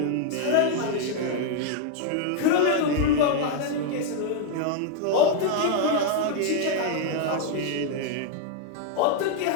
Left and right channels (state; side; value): different; both; correlation 0.00